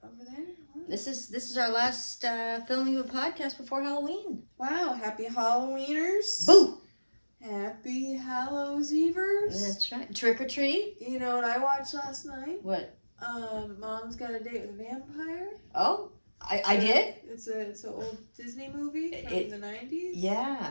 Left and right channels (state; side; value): inverted; both; correlation -1.00